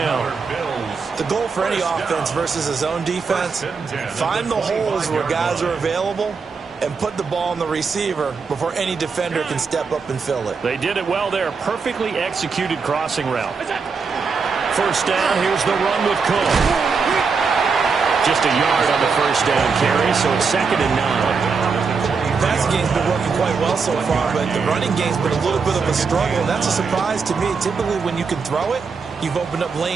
The goal for any offense versus a zone defense, find the holes where guys are available and put the ball on the receiver before any defender can step up and fill it. They did it well there. Perfectly executed crossing route. First down, here's the run with Cook. Just a yard on the first down carry, so it's 2nd and 9. Passing game's been working quite well so far, but the running game's been a little bit of a struggle. That's a surprise to me. Typically, when you can throw it, you've opened up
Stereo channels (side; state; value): left; quieter; 5.2 dB